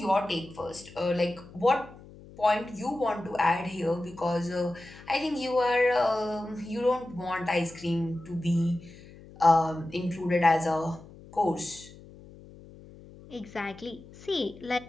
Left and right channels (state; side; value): noise; left; hum, 20 dB below the sound